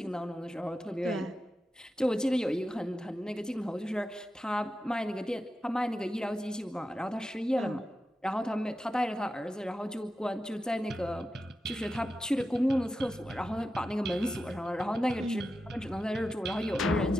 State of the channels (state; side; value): normal; both; correlation 0.91